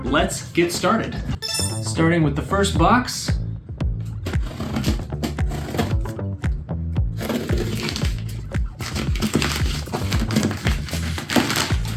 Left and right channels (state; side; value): identical; both; correlation 1.00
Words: let's get started. Starting with the first box.